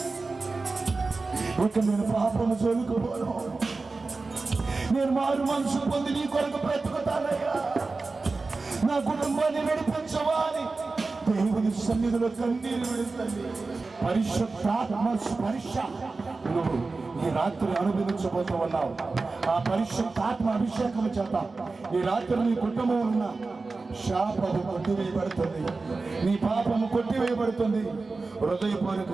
ఇక నేను పాపము చదువుకోను, నేను మారు మనసు పొంది నీ కొరకు బ్రతుకుతానయ్యా. నా కుటుంబాన్ని నడిపించవా అని దేవుని సన్నిధిలో కన్నీరు విడుతుంది. పరిశుద్ధాత్మ స్పర్శ నువ్వు ఈ రాత్రి అనుభవించబోతూ ఉన్నావు. ఆ పరిశుద్ధాత్మ అభిషేకం చేత ఈ రాత్రి నీ కుటుంబంలో ఉన్న శాపము కొట్టివేయబడుతుంది, నీ పాపము కొట్టివేయబడుతుంది.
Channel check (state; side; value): quieter; left; 3.8 dB